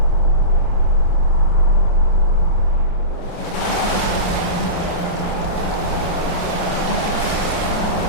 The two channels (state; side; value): late; right; 28 ms